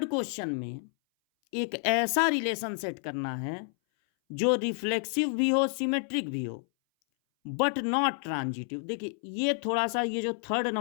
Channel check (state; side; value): silent; right; 58 dB below the other